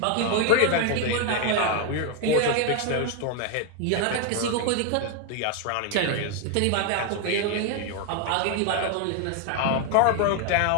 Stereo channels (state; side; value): different; both; correlation 0.01